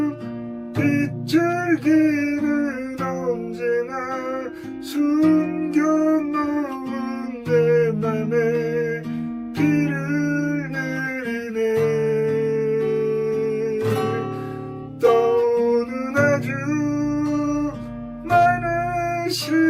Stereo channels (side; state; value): both; identical; correlation 1.00